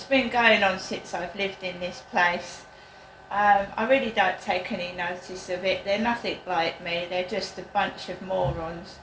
been going on since I've lived in this place. I really don't take any notice of it. They're nothing like me. They're just a bunch of morons.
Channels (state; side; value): identical; both; correlation 1.00